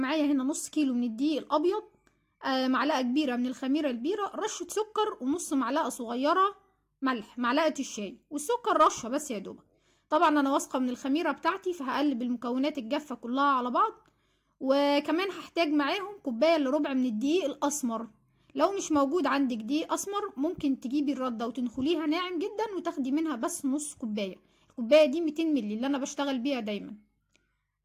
هنا نص كيلو من الدقيق الابيض، معلقه كبيره من الخميره البيره، رشه سكر، ونص معلقه صغيره ملح، معلقه الشاي والسكر رشه بس يا دوبك. طبعا انا واثقه من الخميره بتاعتي، فهقلب المكونات الجافه كلها على بعض. وكمان هحتاج معاهم كوبايه الا ربع من الدقيق الاسمر. لو مش موجود عندك دقيق اسمر ممكن تجيبي الرده وتنخليها ناعم جدا وتاخدي منها بس نص كوبايه. الكوبايه دي 200 مللي اللي انا بشتغل بيها دايما.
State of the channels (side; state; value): both; identical; correlation 1.00